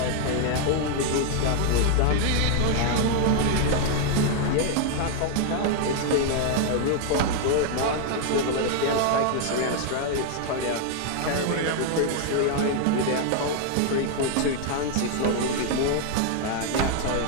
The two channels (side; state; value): both; different; correlation 0.00